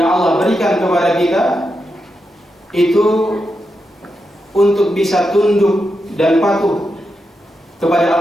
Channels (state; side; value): normal; both; correlation 0.86